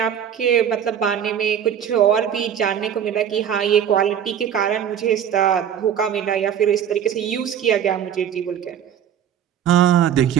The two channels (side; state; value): left; quieter; 9.1 dB